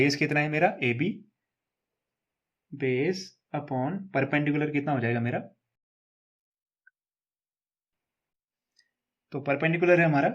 कितना है मेरा A B, base upon perpendicular कितना हो जाएगा मेरा, तो परपेंडिकुलर है हमारा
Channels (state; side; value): identical; both; correlation 1.00